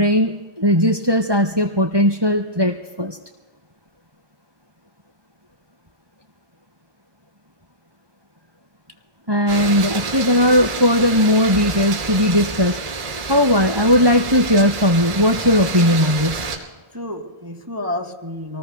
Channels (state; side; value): late; left; 1.1 ms